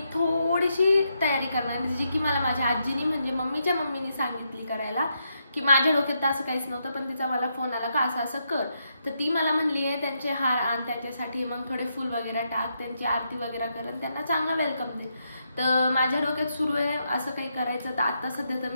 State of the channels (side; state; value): both; inverted; correlation -0.80